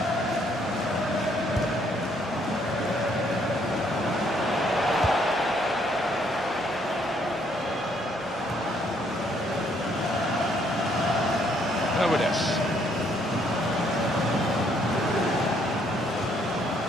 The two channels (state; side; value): normal; both; correlation 0.68